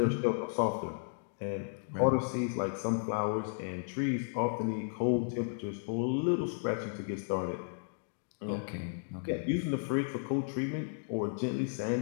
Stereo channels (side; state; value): right; silent; digital silence